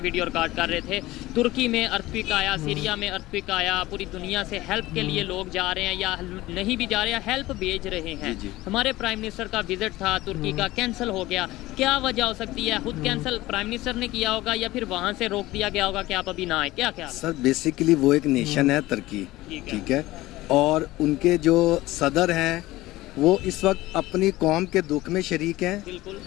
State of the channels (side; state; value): right; quieter; 17.9 dB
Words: रिकॉर्ड कर रहे थे। तुर्की में अर्थक्वेक आया, सीरिया में अर्थक्वेक आया, पूरी दुनिया से हेल्प के लिए लोग जा रहे हैं या नहीं भी जा रहे हैं, हेल्प भेज रहे हैं। जी। हमारे प्राइम मिनिस्टर का विजिट था तुर्की का, कैंसिल हो गया। क्या वजह हो सकती है? खुद कैंसिल प्राइम मिनिस्टर ने किया होगा या फिर वहाँ से रोक दिया गया होगा कि आप अभी ना आए? क्या क्या सर, बेसिकली वो एक नेशन है तुर्की, ठीक है, और उनके जो सदर हैं वो इस वक्त अपनी कौम के दुख में शरीक हैं